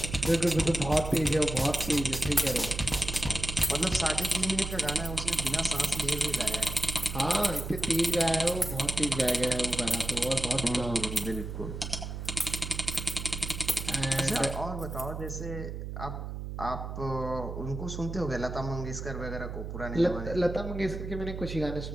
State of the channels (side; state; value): right; noise; hum, 7 dB below the sound